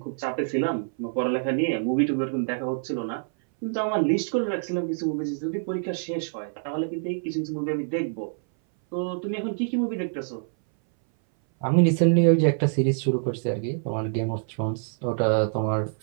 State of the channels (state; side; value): silent; left; 59 dB below the other